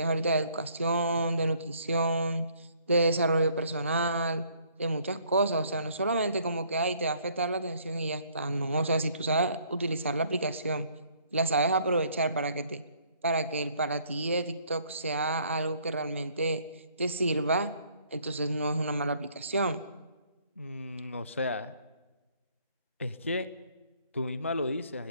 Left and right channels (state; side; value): inverted; both; correlation -0.63